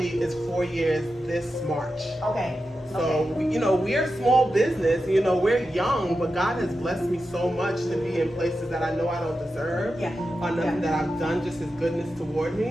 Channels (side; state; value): both; normal; correlation 0.90